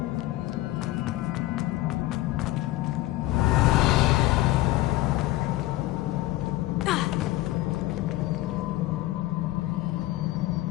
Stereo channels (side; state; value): right; quieter; 17.1 dB